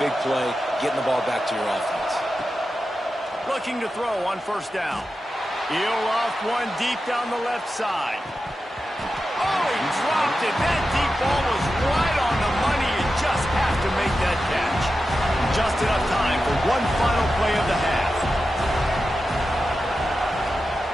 big play, getting the ball back to your offense. Looking to throw on first down. He'll off one deep down the left side. Oh, he dropped it. That deep ball was right on the money. You just have to make that catch. Just enough time for one final play of the half.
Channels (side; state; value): both; normal; correlation 0.91